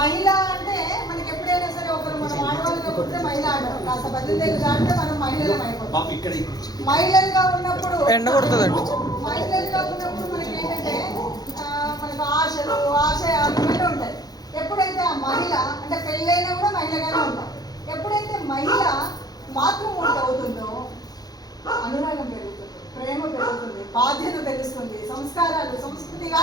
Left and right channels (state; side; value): late; right; 0.19 ms